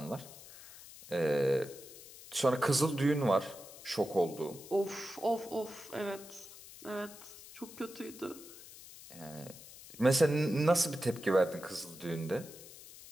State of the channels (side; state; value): left; noise; hiss, 17 dB below the sound